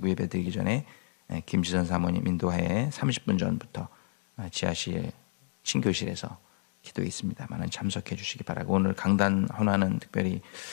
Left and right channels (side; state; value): right; silent; digital silence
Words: 예배 드리기 전에 김지선 사모님 인도하에 30분 전부터 지하실 신교실에서 기도에 있습니다. 많은 참석해 주시기 바라고, 오늘 강단 헌화는 특별히